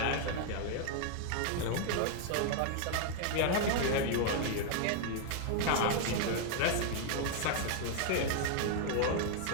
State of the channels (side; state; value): both; different; correlation 0.00